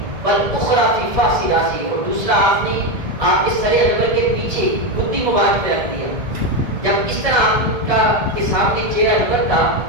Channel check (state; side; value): late; left; 1.7 ms